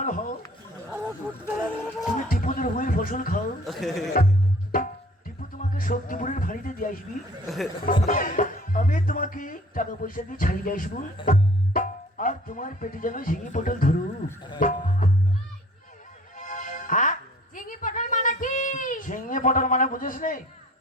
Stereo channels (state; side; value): normal; both; correlation 0.51